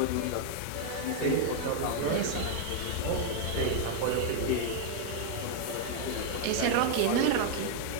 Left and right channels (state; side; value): different; both; correlation 0.00